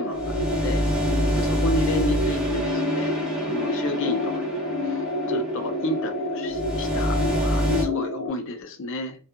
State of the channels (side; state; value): both; normal; correlation 0.39